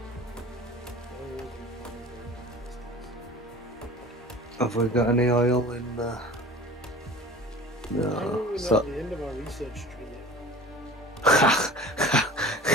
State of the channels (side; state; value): both; normal; correlation 0.40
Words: Have we got any oil in there? How are No. we not at the end of our research tree yet?